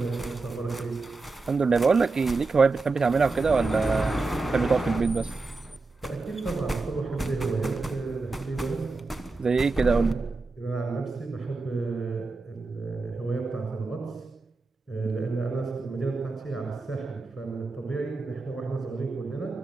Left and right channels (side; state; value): left; quieter; 3.8 dB